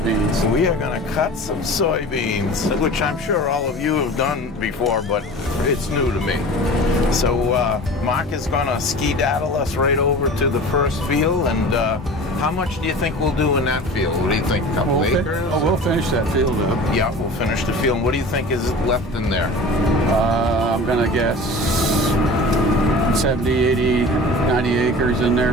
We are gonna cut some soybeans, which I'm sure all of you have done before, but it's new to me. So Marc is gonna ski-daddle us right over to the first field, and how much do you think we'll do in that field? What do you think? A couple acres? Oh, we'll finish that field up. Yeah, we'll finish the field. What do you think is left in there? I'm gonna guess 70, 80, 90 acres in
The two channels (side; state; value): both; normal; correlation 0.38